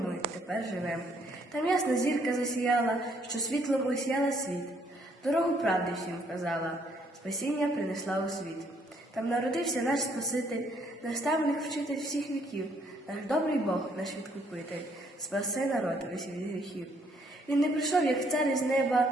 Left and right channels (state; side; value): normal; both; correlation 0.68